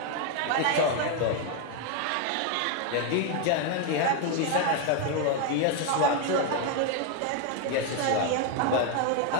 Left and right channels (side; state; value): both; different; correlation 0.01